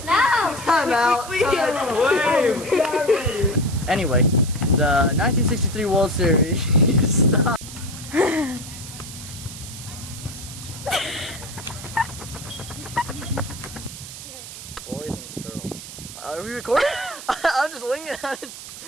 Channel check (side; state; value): right; noise; hiss, 12 dB below the sound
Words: No. Time out. Anyway, the 1963 World Series. Stop. Boys and girls. Are we recording? I'm just winging it. As